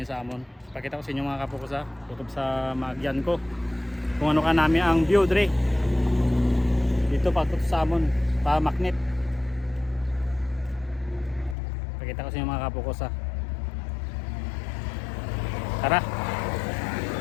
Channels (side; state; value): right; drops out; at 11.6 s